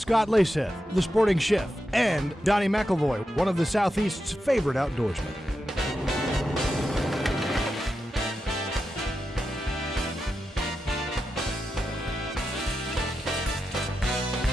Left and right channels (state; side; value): normal; both; correlation 0.89